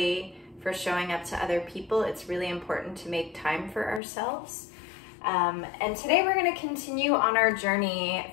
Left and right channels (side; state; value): right; drops out; at 4.0 s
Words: for showing up to other people. It's really important to make time for ourselves. And today we're going to continue on our journey